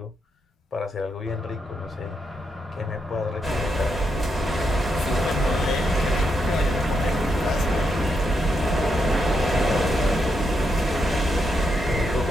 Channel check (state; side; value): normal; both; correlation 0.81